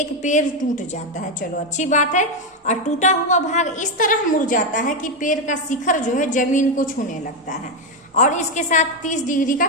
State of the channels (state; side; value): normal; both; correlation 0.07